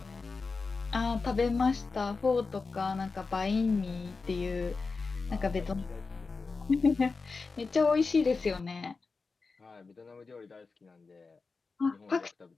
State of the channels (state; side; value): quieter; right; 4.3 dB